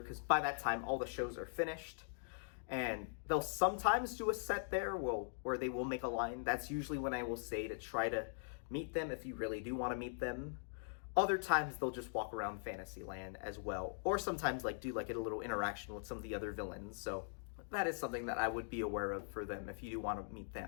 by that time all the shows are finished, and they'll sometimes do a set there where they will make a line. That's usually when I will say to try to meet them if you really do want to meet them. Other times they'll just walk around Fantasyland as well, or sometimes like do like a little interaction with some of the other villains. So that is something that I would be aware of for them if you do want to meet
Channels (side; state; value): right; silent; digital silence